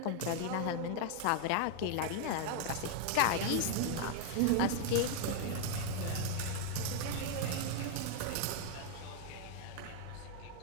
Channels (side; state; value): both; different; correlation 0.00